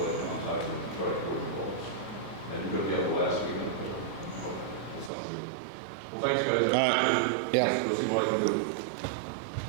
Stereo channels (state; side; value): drops out; left; at 5.1 s